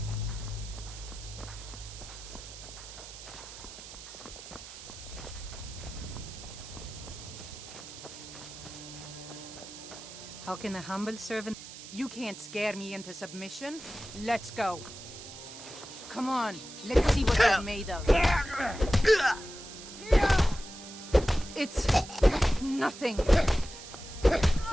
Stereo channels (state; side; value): noise; right; hiss, 14 dB below the sound